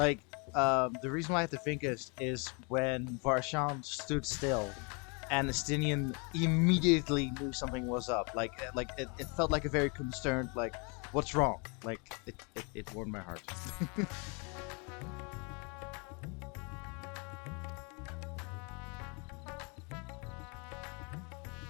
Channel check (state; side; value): quieter; right; 33.4 dB